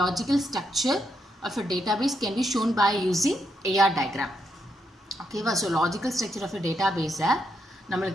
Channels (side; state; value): both; normal; correlation 0.80